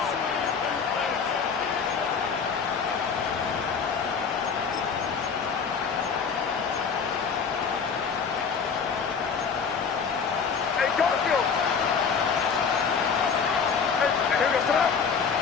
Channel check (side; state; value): right; quieter; 6.0 dB